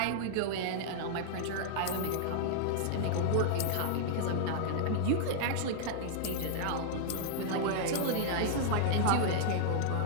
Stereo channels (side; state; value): both; different; correlation -0.01